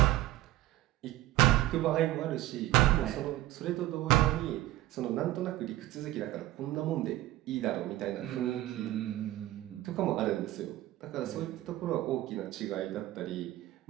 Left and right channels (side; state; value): left; quieter; 16.0 dB